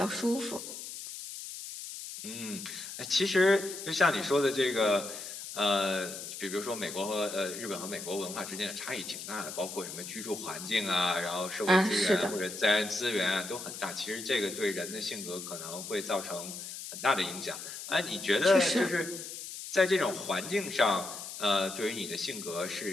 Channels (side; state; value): left; noise; hiss, 9 dB below the sound